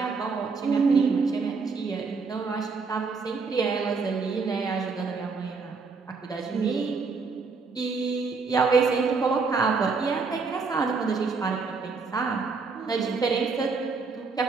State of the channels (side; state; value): left; quieter; 4.7 dB